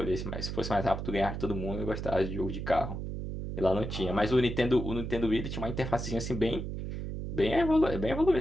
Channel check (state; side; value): noise; right; hum, 5 dB below the sound